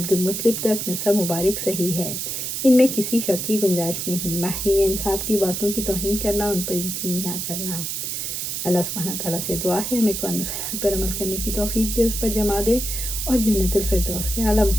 المطلب تک نسب مبارک صحیح ہے، ان میں کسی شک کی گنجائش نہیں۔ ماہرین انساب کی باتوں کی توہین کرنا، ان پر یقین نہ کرنا۔ اللہ سبحانہ تعالیٰ سے دعا ہے ہمیں قرآن و سنت پر عمل کرنے کی توفیق دے، اس پر جمع دے اور جنت الفردوس کے اعلیٰ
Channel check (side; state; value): right; noise; hiss, 3 dB below the sound